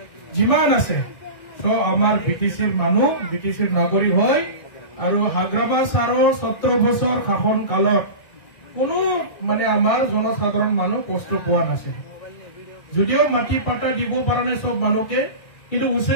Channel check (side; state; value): right; late; 1.5 ms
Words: যিমান আছে সব আমার বিটিসির মানুষ বিটিসির নাগরিক হয় আৰু হাগ্ৰামা ছাৰৰ 17 বছৰ শাসন কালত কোনো মানে আমাৰ জনসাধাৰণ মানুহ কষ্ট পোৱা নাছিল যদিও মাটি পাট্টা দিব পৰা নাই সব মানুহকে কিন্তু